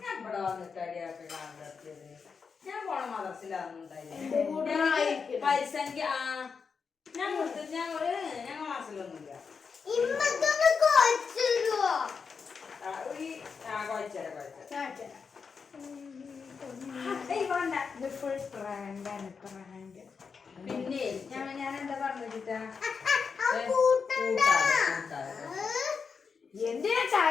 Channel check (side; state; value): right; quieter; 5.6 dB